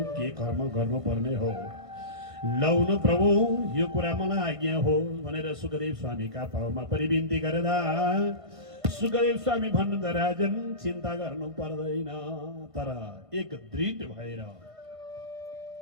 के कर्म गर्नुपर्ने हो लौनु प्रभु यो कुरा मलाई आज्ञा हो भनेर सुखदेव स्वामीका पाउमा परिविन्ती गर्दा सुखदेव स्वामी भन्नुहुन्छ राजन चिन्ता गर्नु पर्दैन तर एक दृढ भएर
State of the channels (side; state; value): left; late; 1.5 ms